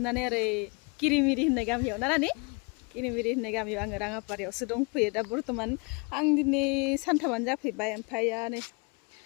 ओरै किरिमिरि होननाय गामियाव ना नानि किरिमिरि होननाय गामियाव आङो राङापारायावसो दंफैयो दा बर्थमान आं दिनै सानथामानो जाफैबाय ओमफ्राय नै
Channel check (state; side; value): quieter; right; 31.8 dB